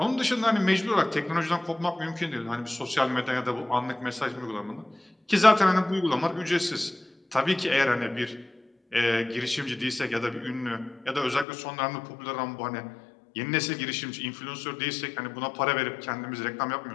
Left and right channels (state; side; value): drops out; right; at 11.5 s